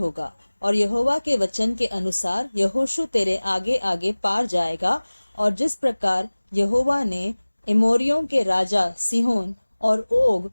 और यहोवा के वचन के अनुसार यहोशू तेरे आगे आगे पार जाएगा। और जिस प्रकार यहोवा ने एमोरियों के राजा सीहोन और ओग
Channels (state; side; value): inverted; both; correlation -1.00